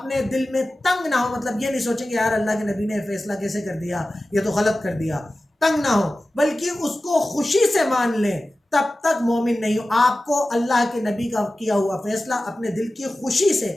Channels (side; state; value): both; normal; correlation 0.95